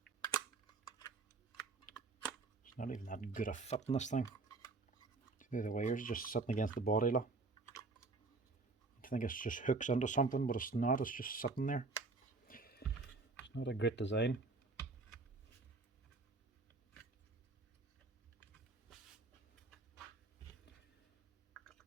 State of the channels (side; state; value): left; quieter; 3.8 dB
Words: It's not even that good a fit in this thing. See, the wires just sitting against the body. Look. I think it's just hooks into something, but it's not. It's just sitting there. It's not a great design.